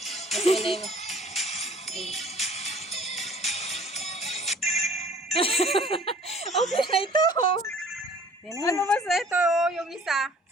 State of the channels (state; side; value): normal; both; correlation 0.52